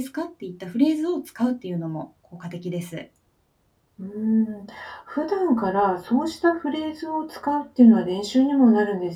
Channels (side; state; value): both; identical; correlation 1.00